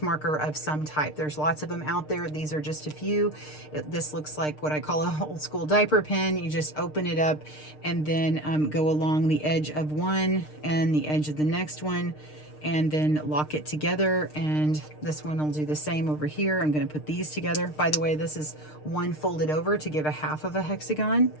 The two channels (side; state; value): right; late; 6.6 ms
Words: marker of some type. There's lots of them out there. These are just a few. This looks like what I call a old school diaper pin. You just open it up and then go along the edge of one and the edge of the next one, and then lock it together. And this one will do the same over here. I'm going to put these together. By the way, this is one folded over to give a half of a hexagon,